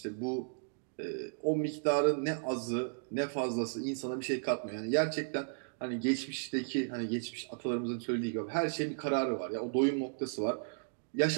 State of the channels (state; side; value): silent; left; digital silence